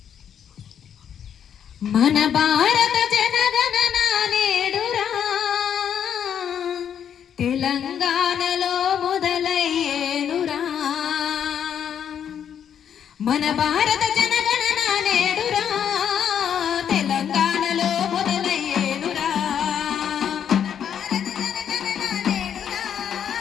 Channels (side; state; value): right; quieter; 8.7 dB